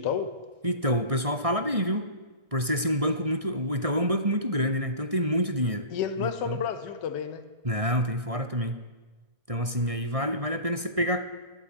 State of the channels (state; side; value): late; left; 1.6 ms